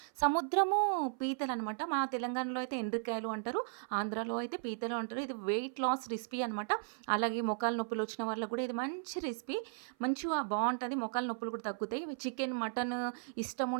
సముద్రము పీతలనమాట. మా తెలంగాణలో అయితే ఎండ్రికాయలు అంటారు. ఆంధ్రాలో అయితే పీతలు అంటారు. ఇది వెయిట్ లాస్ రెసిపీ అనమాట. అలాగే మోకాళ్ళ నొప్పులొచ్చిన వాళ్ళకి గూడా ఇది మంచి రెసిపీ. మంచిగా బావుంటది. మోకాళ్ళ నొప్పులు కూడా తగ్గుతాయి. చికెన్, మటన్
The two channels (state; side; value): silent; left; 54 dB below the other